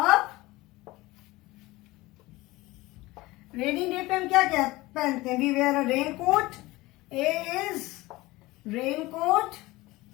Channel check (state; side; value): quieter; right; 20.1 dB